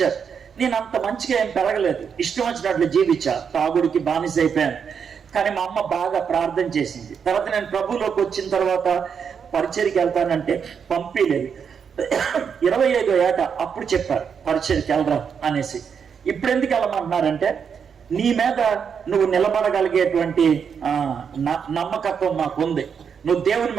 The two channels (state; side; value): quieter; left; 6.9 dB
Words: నేను అంత మంచిగా ఏం పెరగలేదు, ఇష్టం వచ్చినట్లు జీవించా, తాగుడికి బానిస అయిపోయాను. కానీ మా అమ్మ బాగా ప్రార్థన చేసింది. తర్వాత నేను ప్రభువులోకి వచ్చిన తర్వాత పరిచర్కి వెళ్తానంటే పంపిలేదు. 25వ ఏట అప్పుడు చెప్పారు పరిచర్కి వెళ్ళరా అనేసి. ఇప్పుడు ఎందుకు వెళ్ళమంటున్నారంటే, నీ మీద నువ్వు నిలబడగలిగేటువంటి నమ్మకత్వం మాకు ఉంది, నువ్వు దేవుని